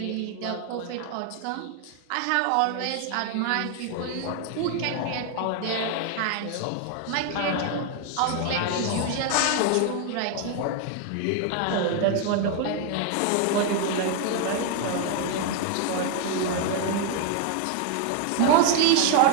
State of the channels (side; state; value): both; different; correlation 0.00